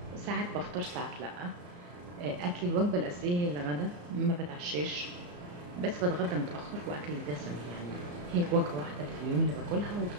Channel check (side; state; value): left; late; 34 ms